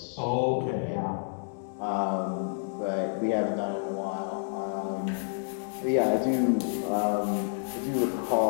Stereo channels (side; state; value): right; silent; digital silence